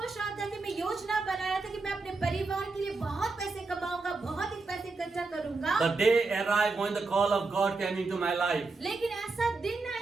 रहा था कि मैं योजना बना रहा था कि मैं अपने परिवार के लिए बहुत पैसे कमाऊंगा, बहुत ही पैसे इकट्ठा करूंगा। The day arrived when the call of God came into my life. लेकिन ऐसा दिन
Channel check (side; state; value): left; quieter; 3.8 dB